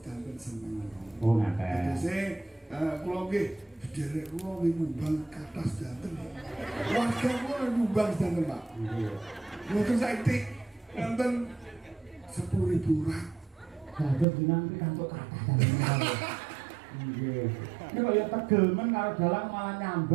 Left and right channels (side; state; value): left; drops out; at 14.2 s